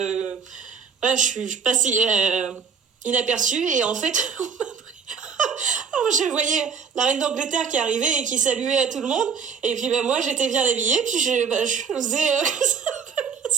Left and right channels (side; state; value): left; quieter; 6.2 dB